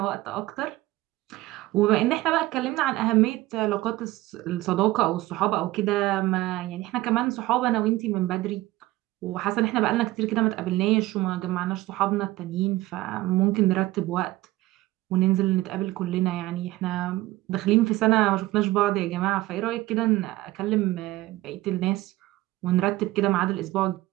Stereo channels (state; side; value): quieter; left; 17.7 dB